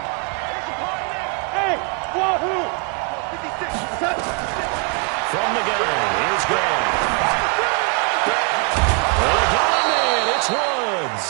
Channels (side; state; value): left; quieter; 36.1 dB